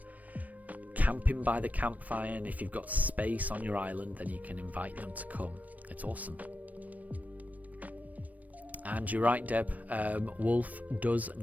camping by the campfire, and if you've got space on your island, then you can invite them to come. It's awesome. And you're right, Deb. Wolf does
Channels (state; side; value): late; left; 0.074 ms